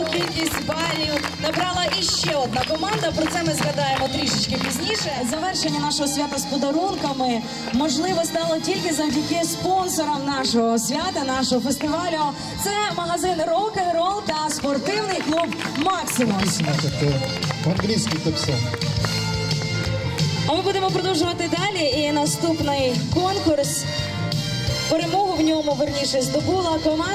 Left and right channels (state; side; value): identical; both; correlation 1.00